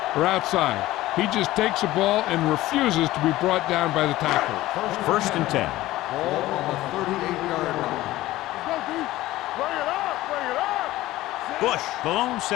or outside. He just takes the ball and refuses to be brought down by the tackler. First and 10. Ball on the 38-yard line. Let's go, D. Bring it up. Bring it up. Bush, the lone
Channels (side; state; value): right; quieter; 16.6 dB